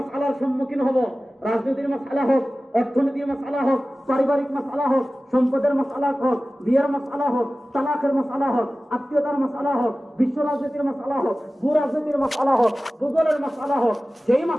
সম্মুখীন হব, রাজনীতির মাসআলা হোক, অর্থনীতির মাসআলা হোক, পারিবারিক মাসআলা হোক, সম্পদের মাসআলা হোক, বিয়ের মাসআলা হোক, তালাকের মাসআলা হোক, আত্মীয়তার মাসআলা হোক, বিশ্ব রাজনীতির মাসআলা হোক, ভূ রাজনীতির মাসআলা হোক, ভূগোলের মাসআলা হোক, যেই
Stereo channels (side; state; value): both; normal; correlation 0.96